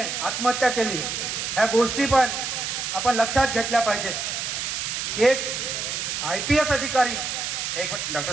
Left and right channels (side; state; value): right; noise; hiss, 3 dB below the sound